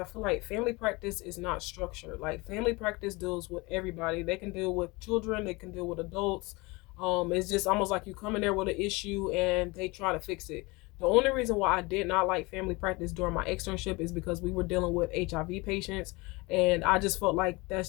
feel like family practice is not structured. Like family practice deals with everybody. They can deal with children, they can deal with adults. It's just almost like you come in there with an issue and they try to fix it. The only reason why I did not like family practice during my externship is because we were dealing with HIV patients, and I just felt like that's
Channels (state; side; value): quieter; right; 24.7 dB